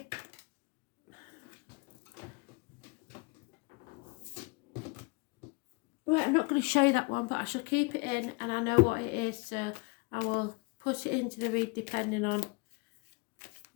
Right, I'm not going to show you that one, but I shall keep it in and I know what it is, so I will put it into the read depending on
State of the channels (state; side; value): quieter; right; 28.9 dB